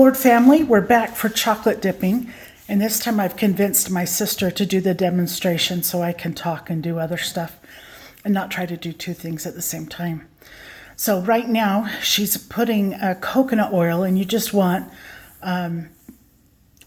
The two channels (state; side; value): identical; both; correlation 1.00